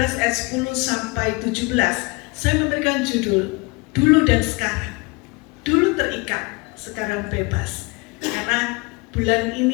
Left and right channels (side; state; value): right; quieter; 27.4 dB